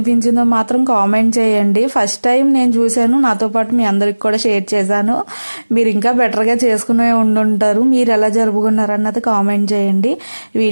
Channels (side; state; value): both; inverted; correlation -1.00